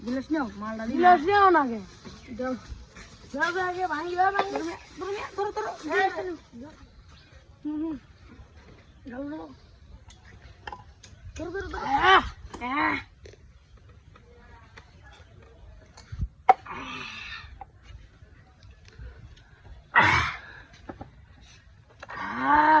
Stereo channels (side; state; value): both; identical; correlation 1.00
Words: গিলাস নাও মালটা গিলাস নাও না গে দাও দাও আগে ভাঙিবা ধরো গালো ধরো